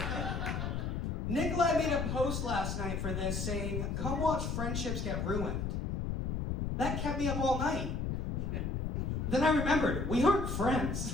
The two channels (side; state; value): left; noise; rumble, 1 dB below the sound